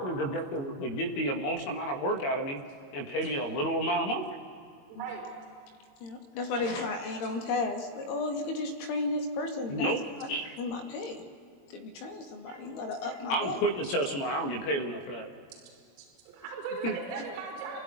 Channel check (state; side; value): late; right; 22 ms